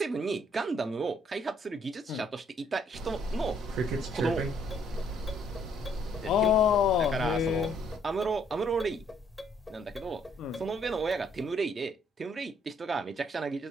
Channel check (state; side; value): normal; both; correlation 0.66